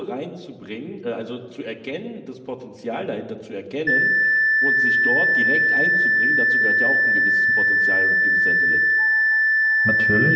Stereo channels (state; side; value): identical; both; correlation 1.00